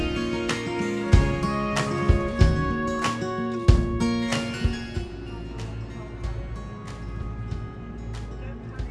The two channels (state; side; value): identical; both; correlation 1.00